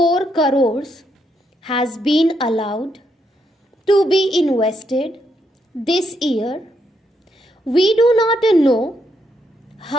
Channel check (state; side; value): normal; both; correlation 0.78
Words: crores has been allowed to be invested this year. We do not know